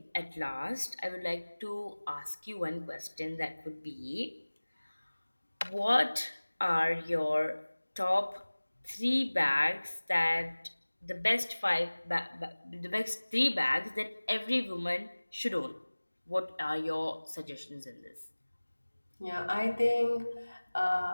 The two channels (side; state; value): both; inverted; correlation -1.00